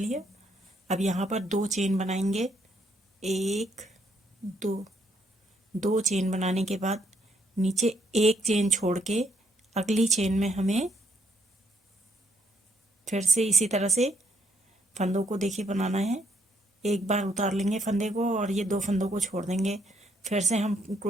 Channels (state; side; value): normal; both; correlation 0.71